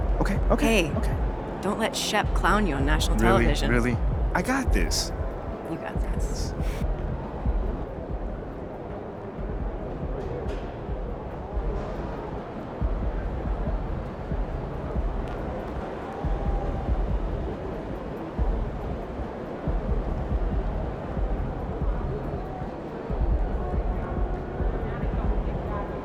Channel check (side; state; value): both; identical; correlation 1.00